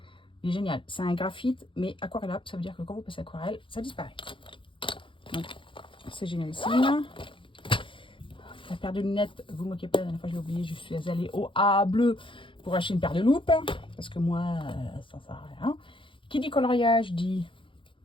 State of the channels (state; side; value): late; right; 0.25 ms